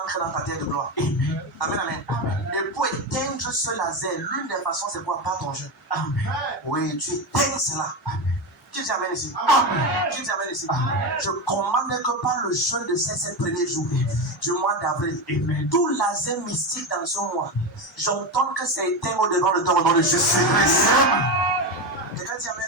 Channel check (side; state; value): both; normal; correlation 0.16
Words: dans ta terre de gloire. Amen, amen. Et pour éteindre ce laser, l'une des façons, c'est quoi? Pas ton jeu. Oui, tu éteins cela. Qui dit amen ici? Qui dit amen ici? Je commande que par le jeûne de ces 7 premiers jours du mois d'avril, tout laser mystique dans ce mois, j'entends que c'est éteint au devant de ton nom de Jésus-Christ. Quelqu'un dit